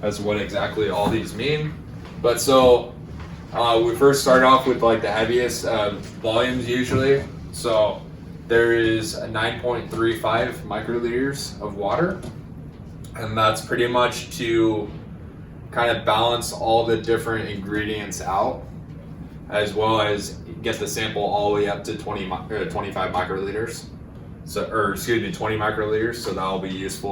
as to what exactly all these mean. But so we first start off with like the heaviest volumes usually. So there is a 9.35 microliters of water, and that's pretty much to kind of balance all the different ingredients out, as well as get the sample all the way up to 25 microliters. So, or excuse me, 20 microliters. So that will be useful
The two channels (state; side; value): identical; both; correlation 1.00